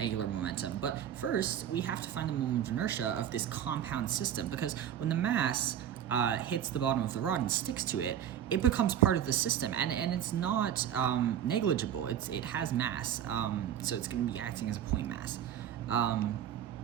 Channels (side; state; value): left; quieter; 10.0 dB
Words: momentum. But first, we have to find the moment of inertia of this compound system, because when the mass hits the bottom of the rod and sticks to it, it becomes part of the system, and it's not negligible. It has mass, so it's going to be acting as a point mass.